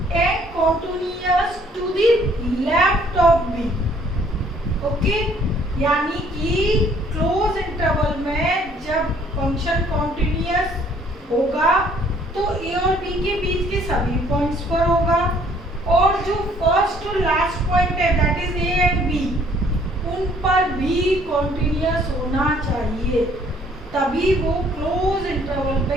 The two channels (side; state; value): both; normal; correlation 0.61